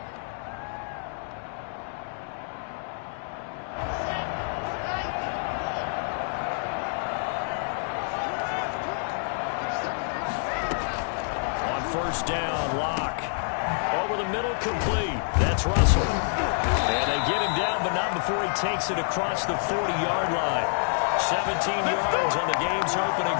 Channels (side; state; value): right; silent; digital silence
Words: First down, Locke. Over the middle, complete. That's Russell. And they get him down, but not before he takes it across the 40-yard line. 17 yards on the game's opening